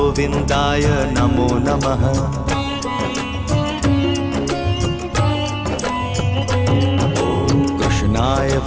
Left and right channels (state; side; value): identical; both; correlation 1.00